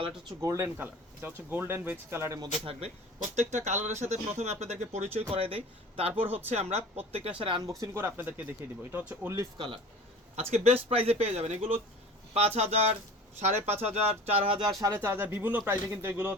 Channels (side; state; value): both; normal; correlation 0.41